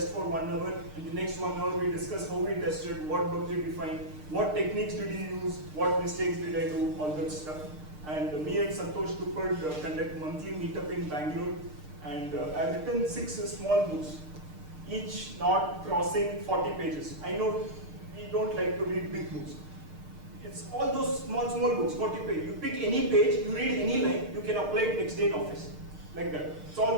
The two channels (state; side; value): late; left; 6.6 ms